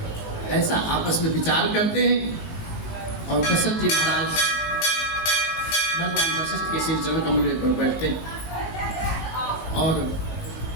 ऐसा आपस में विचार करते हैं और दशरथ जी महाराज भगवान वशिष्ठ के श्री चरण कमल पर बैठते हैं। और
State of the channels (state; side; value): late; right; 18 ms